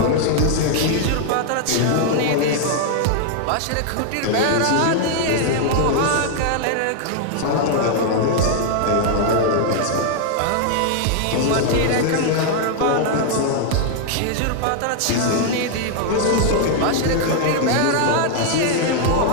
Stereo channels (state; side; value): different; both; correlation 0.00